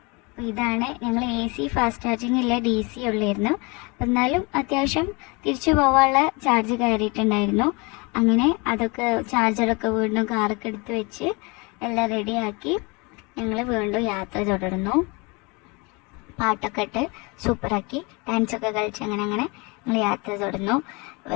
ഇതാണ് ഞങ്ങൾ AC ഫാസ്റ്റ് ചാർജിങ് ഇല്ല, DC ഉള്ളായിരുന്നു. എന്നാലും അത്യാവശ്യം തിരിച്ചു പോകാനുള്ള ചാർജ് കയറിയിട്ടുണ്ടായിരുന്നു. അങ്ങനെ അതൊക്കെ ചാർജറൊക്കെ വീണ്ടും കാറൊക്കെ എടുത്ത് വെച്ച് എല്ലാം റെഡിയാക്കി ഞങ്ങൾ വീണ്ടും യാത്ര തുടർന്നു. പാട്ടൊക്കെ ഇട്ട് സൂപ്പറാക്കി ഡാൻസൊക്കെ കളിച്ച് അങ്ങനെ ഞങ്ങൾ യാത്ര തുടർന്നു.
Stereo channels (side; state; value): right; quieter; 28.3 dB